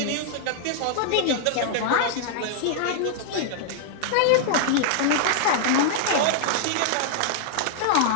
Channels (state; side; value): different; both; correlation -0.01